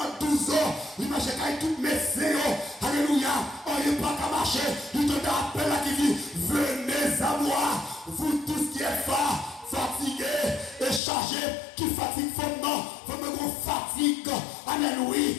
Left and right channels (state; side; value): drops out; right; at 11.0 s